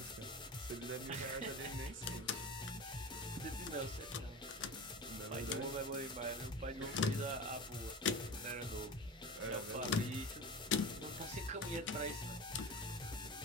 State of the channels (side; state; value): both; normal; correlation 0.30